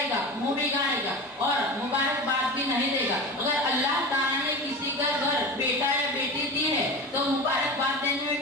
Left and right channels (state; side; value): normal; both; correlation 0.29